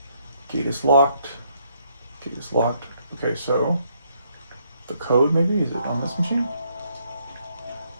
Gate is locked. Gate is locked. Okay, so the code maybe? Is it on this machine?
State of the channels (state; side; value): inverted; both; correlation -0.71